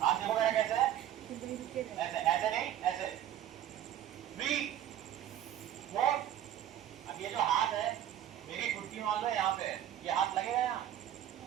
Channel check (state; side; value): quieter; left; 11.3 dB